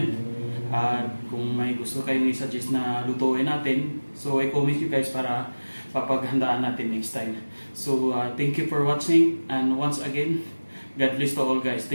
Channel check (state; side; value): inverted; both; correlation -1.00